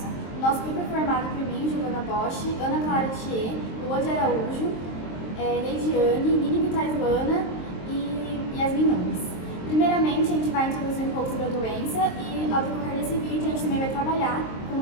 O nosso grupo é formado por mim, Giovana Bosch, Ana Clara Thier, Lua de Araújo, Leidiane, Nini Vitaislana e Yasmin Nunes. Primeiramente, a gente vai introduzir um pouco sobre a doença e, ao decorrer desse vídeo, a gente também vai trabalhar com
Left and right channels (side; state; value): right; late; 23 ms